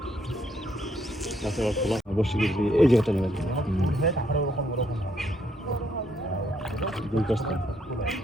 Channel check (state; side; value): normal; both; correlation 0.72